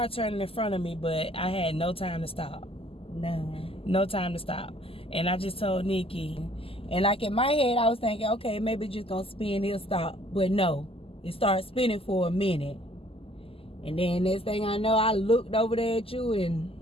turning in front of me, but I had no time to stop. No time to stop. And I just told Nikki. And like in my head, I was thinking, okay, maybe it's just going to spin, it'll stop. But no, it started spinning for a minute. And then next thing I know, I looked over there at you, and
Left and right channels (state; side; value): late; right; 0.27 ms